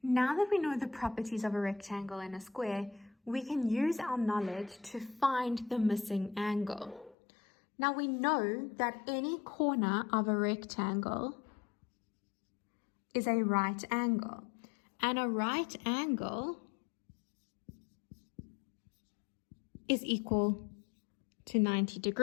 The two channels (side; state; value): right; drops out; at 7.2 s